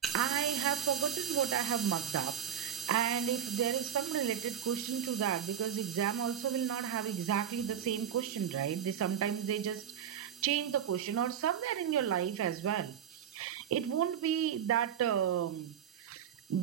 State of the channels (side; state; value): left; quieter; 8.9 dB